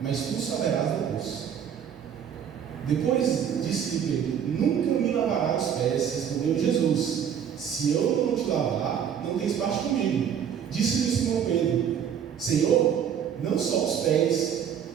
tu saberás depois. Depois disse-lhe Pedro: nunca me lavarás os pés. Respondeu Jesus: se eu não te lavar, não tens parte comigo. Disse-lhe Simão Pedro: Senhor, não só os pés,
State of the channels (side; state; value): left; quieter; 8.5 dB